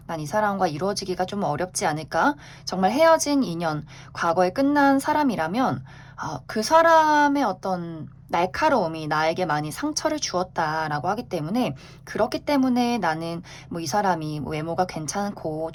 난 이 사람과 이루어지기가 좀 어렵지 않을까? 정말 헤어진 인연, 과거에 끝난 사람이라면 그 사람의 어떤 날카로움이 나에게 많이 상처를 주었다라고 하기 때문에, 그렇기 때문에 나는 이 사람이 외모가 괜찮고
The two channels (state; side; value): identical; both; correlation 1.00